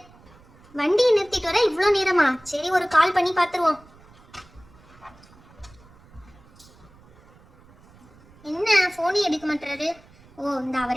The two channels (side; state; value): right; noise; rumble, 27 dB below the sound